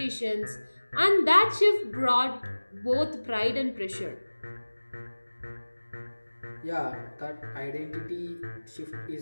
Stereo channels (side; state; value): both; inverted; correlation -1.00